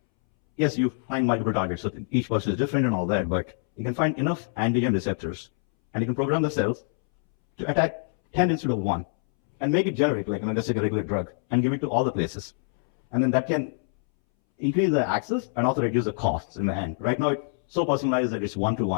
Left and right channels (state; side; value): silent; right; 61 dB below the other